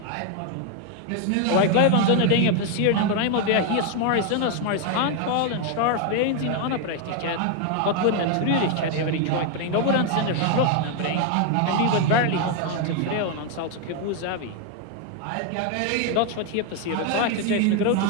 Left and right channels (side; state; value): both; different; correlation 0.01